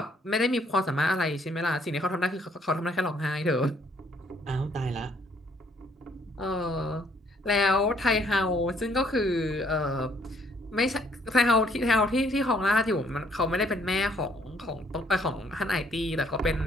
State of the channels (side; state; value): both; normal; correlation 0.65